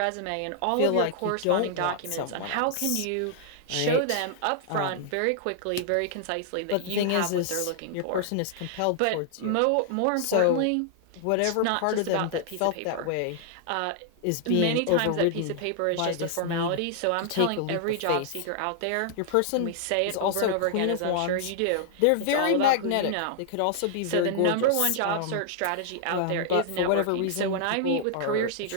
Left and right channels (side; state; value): both; different; correlation -0.01